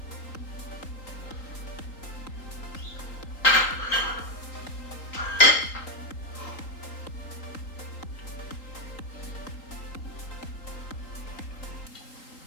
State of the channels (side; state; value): right; late; 3.8 ms